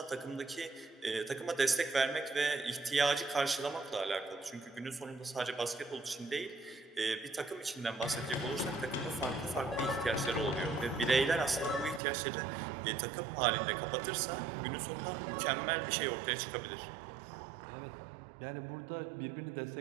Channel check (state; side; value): drops out; left; at 12.0 s